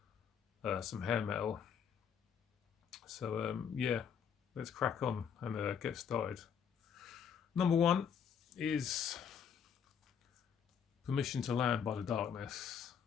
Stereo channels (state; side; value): quieter; right; 7.5 dB